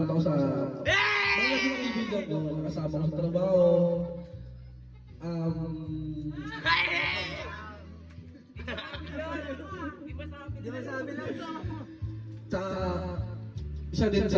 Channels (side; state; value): both; identical; correlation 1.00